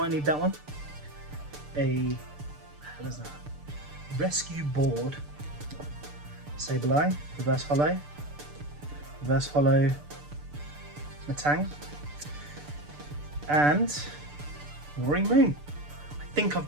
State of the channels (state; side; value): late; left; 6.8 ms